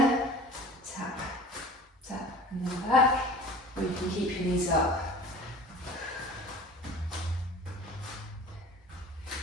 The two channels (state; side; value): normal; both; correlation 0.42